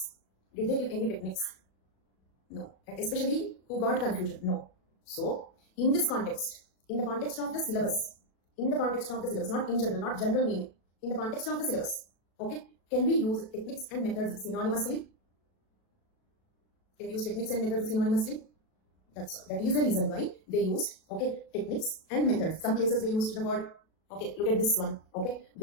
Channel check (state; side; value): late; right; 37 ms